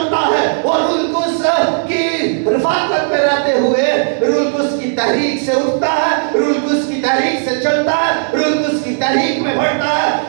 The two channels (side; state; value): left; silent; digital silence